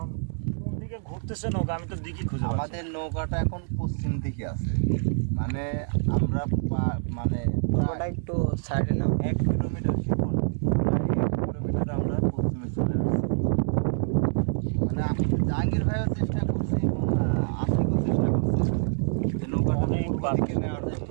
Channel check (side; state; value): left; silent; digital silence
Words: কোন দিকে ঘুরতেছে নৌকা, আমি তো দিকই খুঁজে পাচ্ছি না। আমাদের নৌকাটা এখন পশ্চিম দিকে আছে, মানে আমরা মানে নৌকাটা একটু সাইডে নাও। 1 কিলোমিটার শিখন, প্রায় 1 কিলোমিটার আমরা পশ্চিমে চলে আসছি। মানে জাহাঙ্গীর ভাইও চেষ্টা করছে এবং আশিকও চেষ্টা করছে যে নৌকাটা অনেক পূর্ব দিকে নেওয়ার জন্য।